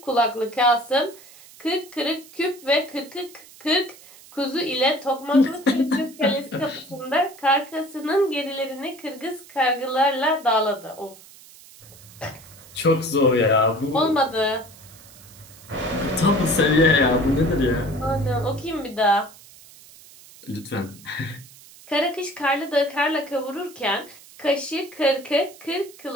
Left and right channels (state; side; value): noise; right; hiss, 21 dB below the sound